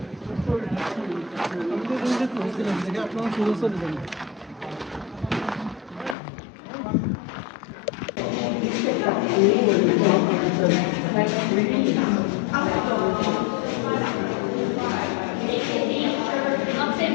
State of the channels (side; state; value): right; drops out; at 6.2 s